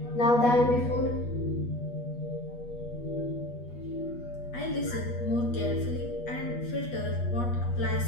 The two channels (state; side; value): late; right; 8.3 ms